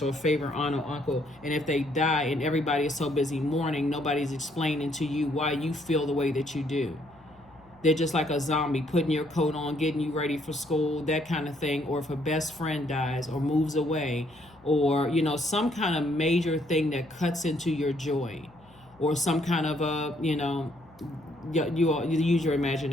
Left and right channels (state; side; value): noise; left; hum, 28 dB below the sound